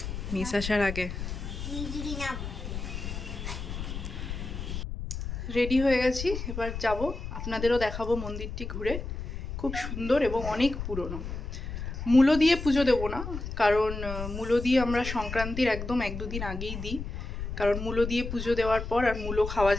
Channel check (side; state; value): left; noise; rumble, 6 dB below the sound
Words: মিস আসার আগে। রেডি হয়ে গেছি, এবার যাব। আপনাদেরও দেখাবো মন্দিরটি ঘুরে। খুব সুন্দর এবং অনেক পুরনো। মূলো দিয়ে পুজো দেবো না, কারণ মূলো দিয়ে আমরা সংক্রান্তির একদম 1-2 দিন আগেই দিই, কারণ মূলো দিয়ে পুজো দেওয়ার পর আর মূলো খাওয়া